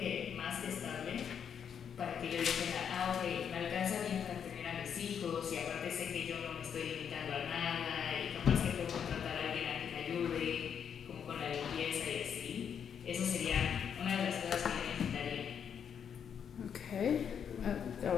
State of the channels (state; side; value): quieter; right; 7.8 dB